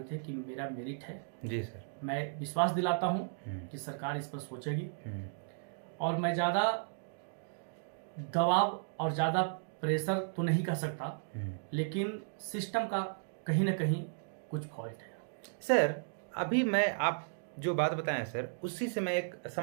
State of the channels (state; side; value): silent; left; digital silence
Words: थे कि मेरा मेरिट है। जी सर। मैं विश्वास दिलाता हूँ कि सरकार इस पर सोचेगी और मैं ज़्यादा दबाव और ज़्यादा प्रेशर तो नहीं कर सकता, लेकिन सिस्टम का कहीं ना कहीं कुछ फॉल्ट है। सर, अभी मैं आप जो बात बताएं सर, उसी से मैं एक